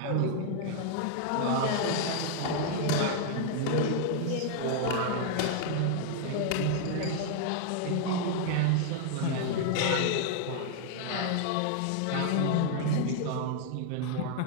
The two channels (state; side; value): different; both; correlation 0.00